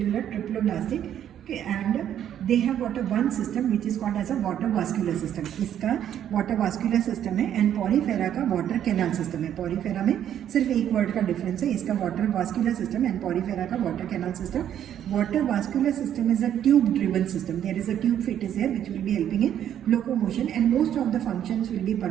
triploblastic. Okay, and they have got a one system which is called as a water vascular system. इसका water vascular system है and porifera का water canal system है. Porifera में सिर्फ एक word का difference है. इसका water vascular system and porifera का water canal system. Water vascular system is a tube driven system. There is a tube fit is there which will be helping in locomotion, and most of the functions will be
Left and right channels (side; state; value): left; quieter; 10.2 dB